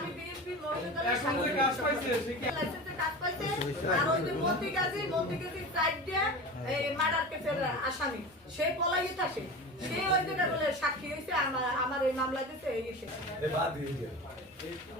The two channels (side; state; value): both; normal; correlation 0.31